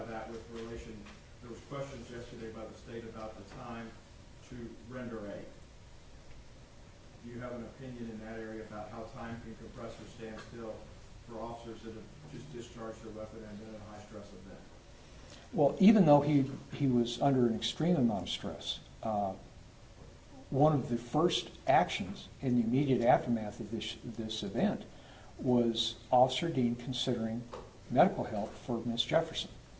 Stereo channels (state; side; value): identical; both; correlation 1.00